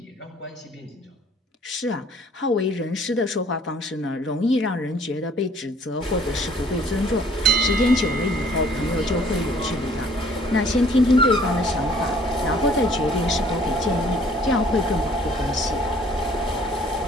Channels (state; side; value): normal; both; correlation 0.57